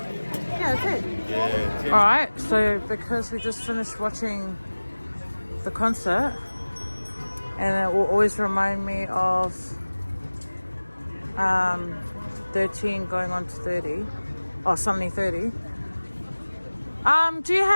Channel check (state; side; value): inverted; both; correlation -1.00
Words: Yeah, it's it. Yeah, 10. Alright, so because we just finished watching the concert, and it will always remind me of 13 going on to 30, or suddenly 30. Do you